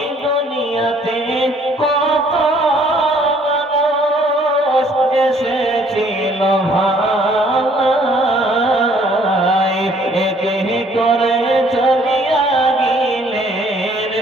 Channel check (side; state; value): both; normal; correlation 0.60